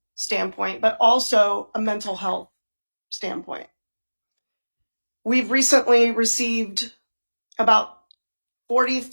standpoint, but also a mental health standpoint. We've recently received about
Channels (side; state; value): both; inverted; correlation -1.00